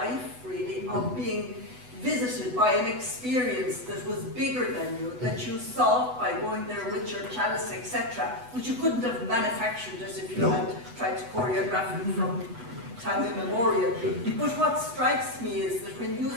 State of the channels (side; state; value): left; late; 8.1 ms